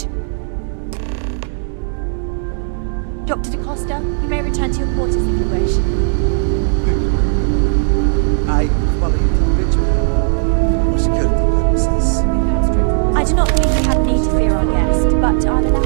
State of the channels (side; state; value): left; silent; digital silence